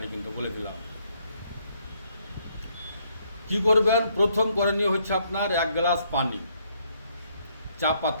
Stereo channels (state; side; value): inverted; both; correlation -0.70